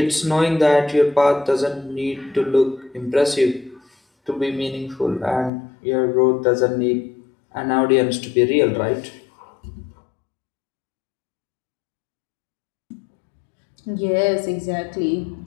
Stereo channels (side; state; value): right; drops out; at 5.5 s